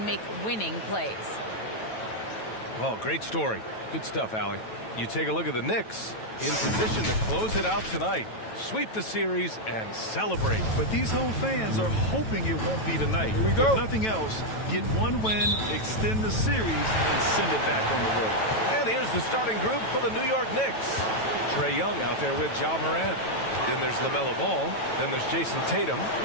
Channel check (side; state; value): right; late; 9.1 ms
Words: make winning plays. Well, great story. Good stuff, Allie. You take a look at the Knicks, in position to close it out tonight, sweep the series, and celebrate. But these home fans are hoping it won't be tonight. Here we go. If nothing else, get one win, extend the series, and send it back on the road. And here's the starting group for the New York Knicks. Trae Young out there with Ja Morant. Then there's LaMelo Ball. Then there's Jason Tatum.